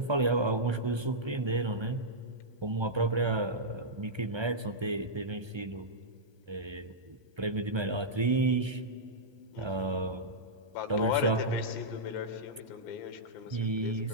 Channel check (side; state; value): left; late; 1.3 ms